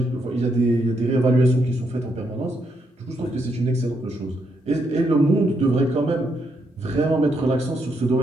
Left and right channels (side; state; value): both; normal; correlation 0.78